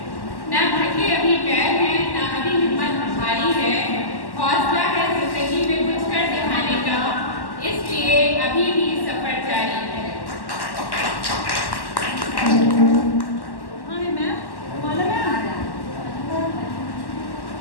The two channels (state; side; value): late; right; 1.1 ms